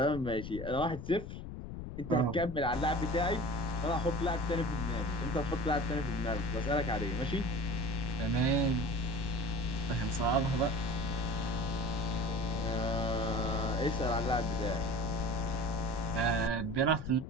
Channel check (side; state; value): left; noise; rumble, 8 dB below the sound